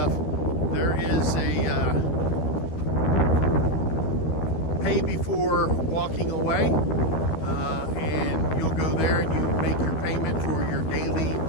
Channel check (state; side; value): late; right; 13 ms